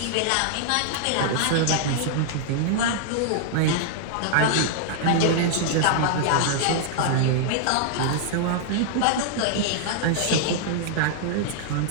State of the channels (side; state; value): both; different; correlation -0.01